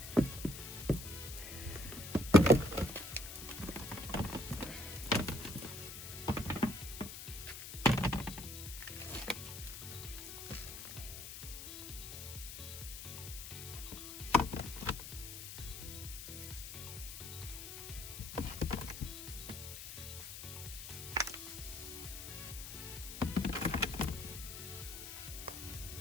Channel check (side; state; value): left; noise; hiss, 9 dB below the sound